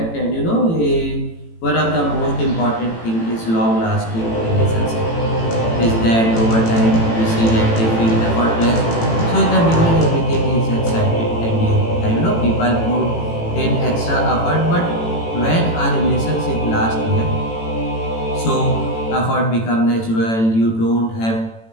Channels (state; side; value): late; right; 18 ms